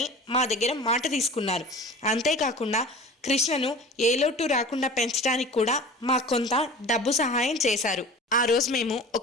మా దగ్గర మాట తీసుకున్నారు. అంతేకాకుండా కృష్ణను ఏ లోటు రాకుండా పెంచడానికి కూడా మాకు కొంత డబ్బు సహాయం చేశారు. ఆ రోజు మేము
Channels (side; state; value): both; normal; correlation 0.38